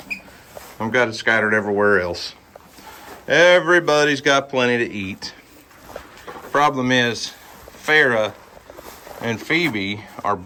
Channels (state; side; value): identical; both; correlation 1.00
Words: I've got it scattered everywhere else. Everybody's got plenty to eat. Problem is, Farrah and Phoebe are